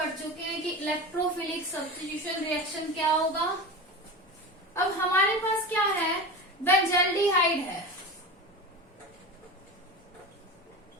चुके हैं कि इलेक्ट्रोफिलिक सब्स्टिट्यूशन रिएक्शन क्या होगा। अब हमारे पास क्या है? बेंजल्डिहाइड है।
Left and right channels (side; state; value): both; normal; correlation 0.28